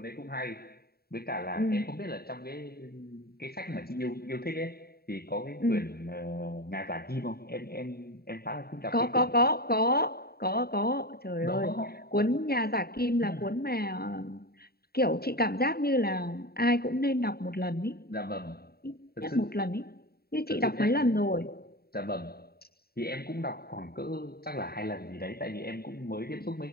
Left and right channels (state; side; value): late; right; 0.45 ms